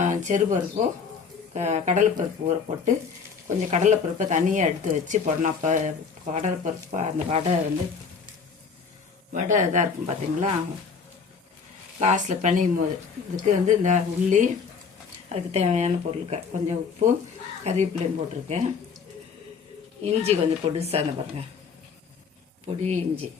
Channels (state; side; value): quieter; right; 5.7 dB